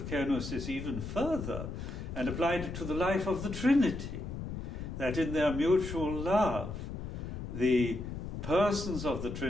kenosis even further and applied it to the life of the Trinity, that in their mutual love, the persons of the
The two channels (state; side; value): noise; left; rumble, 7 dB below the sound